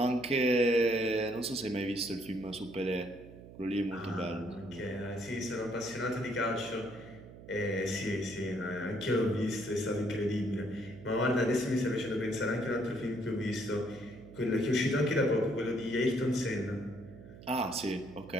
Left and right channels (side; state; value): right; noise; hum, 17 dB below the sound